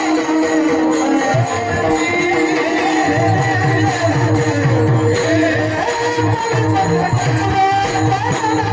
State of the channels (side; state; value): both; identical; correlation 1.00